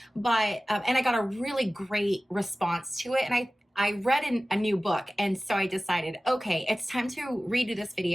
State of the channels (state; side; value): normal; both; correlation 0.97